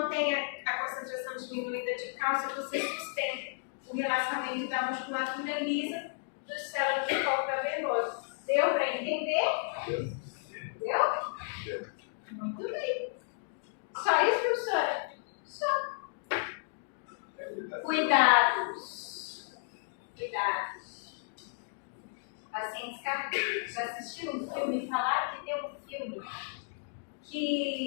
a concentração diminuída de cálcio, você sustenta o relaxamento da musculatura lisa dos células do corpo cavernoso. Deu para entender? Deu? Muito bem. Só isso, professora? Só. Cuidados. Pacientes cardíacos. Já assistiram um filme? Falaram que tem um filme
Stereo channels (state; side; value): silent; right; digital silence